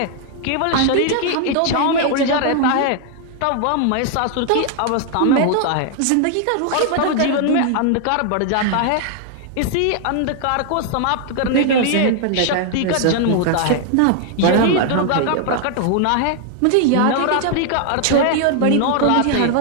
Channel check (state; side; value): different; both; correlation 0.00